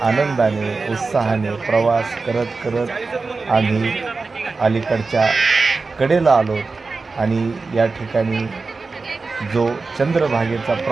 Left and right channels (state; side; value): quieter; left; 4.1 dB